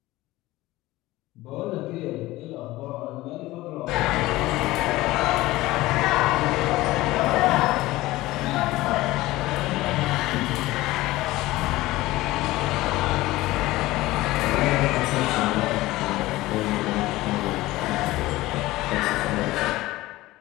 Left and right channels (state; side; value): quieter; right; 18.2 dB